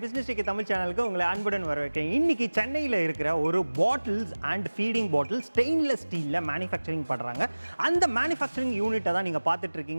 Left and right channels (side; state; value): both; inverted; correlation -1.00